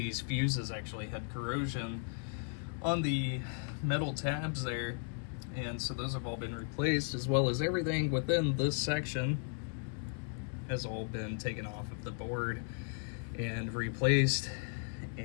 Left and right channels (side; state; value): right; silent; 54 dB below the other